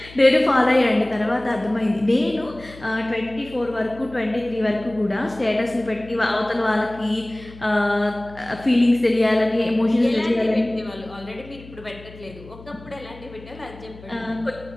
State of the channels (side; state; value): left; noise; hum, 19 dB below the sound